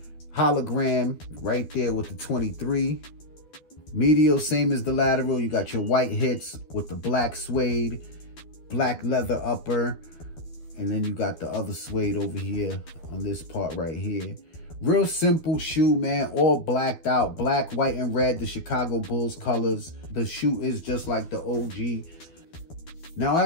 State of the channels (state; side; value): late; right; 12 ms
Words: Hologram right there with the 23. Medial, same as the lateral. You got your white hits with the black suede, black leather upper, and then you got the other suede over here on this part right here. Real simple shoe, man, all blacked out. Black, white, and red, the Chicago Bulls colors. The shoe is just like the OG. Now,